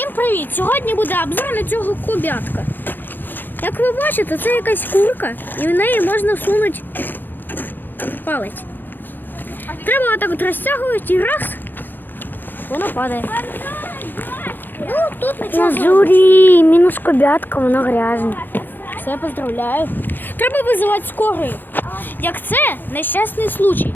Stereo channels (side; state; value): right; late; 0.091 ms